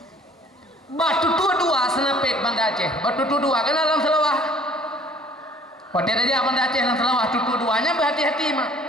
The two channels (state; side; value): normal; both; correlation 0.54